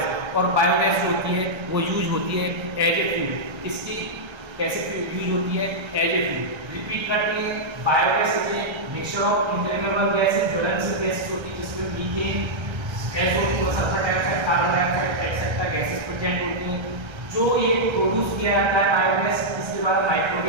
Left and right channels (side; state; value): left; late; 1.3 ms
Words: और बायोगैस जो होती है वो यूज होती है एज ए फ्यूल। इसकी कैसे यूज होती है? As a fuel. रिपीट करते हैं, biogas is a mixture of inflammable gases, ज्वलनशील गैसेस होती है, जिसमें methane, SO2, sulphur dioxide, carbon dioxide etcetera gases present होती हैं। जो ये प्रोड्यूस किया जाता है बायोगैस, इसके बाद